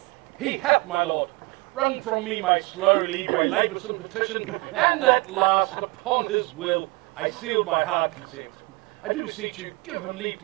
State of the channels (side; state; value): left; quieter; 25.2 dB